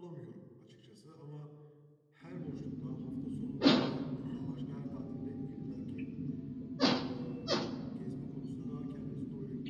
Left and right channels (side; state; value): both; identical; correlation 1.00